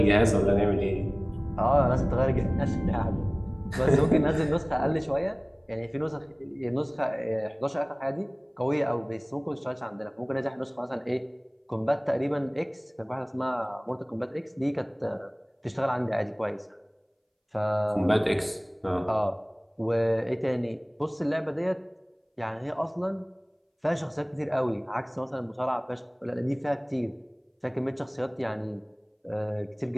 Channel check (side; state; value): both; identical; correlation 1.00